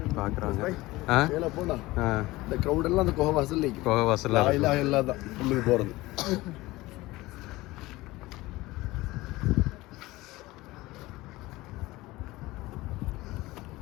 பார்க்குறாங்க. மேலே போனா இந்த க்ரௌட் எல்லாம் அந்த குகை வாசல் நிற்கும். குகை வாசலில் எல்லாம் எல்லாம் தான் உள்ளுக்கு போகிறது.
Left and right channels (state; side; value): quieter; right; 19.4 dB